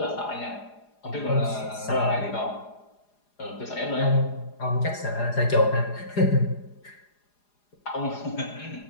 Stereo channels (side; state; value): right; late; 4.9 ms